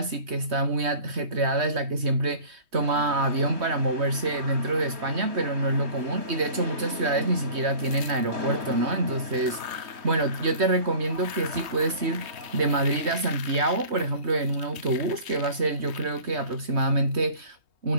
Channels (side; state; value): left; late; 3.2 ms